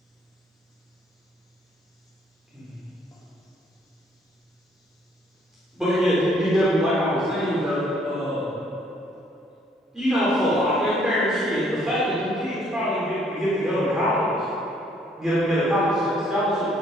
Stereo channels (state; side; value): normal; both; correlation 0.64